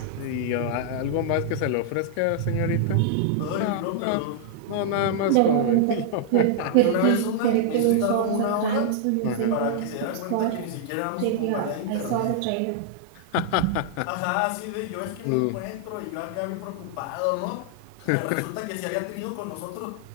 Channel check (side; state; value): both; different; correlation -0.01